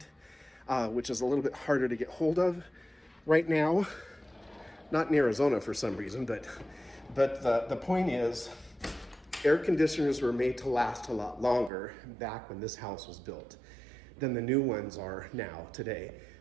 which is a little bit harder to get hold of right now. Not in Arizona for some reason, but the point is, air conditioners were made to last a lot longer back when this house was built than the new ones are now, today.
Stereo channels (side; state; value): left; drops out; at 11.7 s